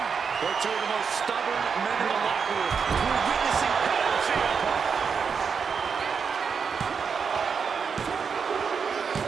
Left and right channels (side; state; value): left; quieter; 6.0 dB